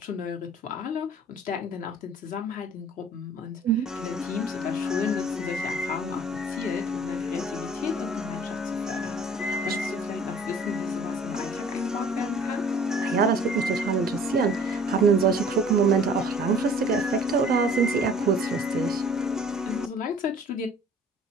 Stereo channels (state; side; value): normal; both; correlation 0.51